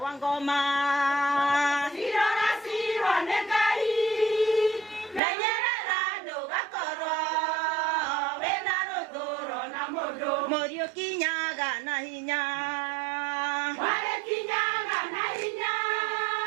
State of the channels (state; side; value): drops out; left; at 5.2 s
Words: Wangoma. Irora cirwo nĩ Ngai. Menyerera ndũgakorwo wĩna rũthũro na mũndũ. Morio kinyaga na hinya.